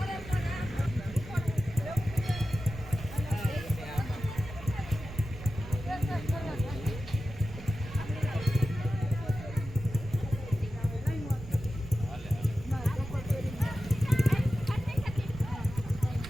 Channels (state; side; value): noise; right; rumble, 13 dB below the sound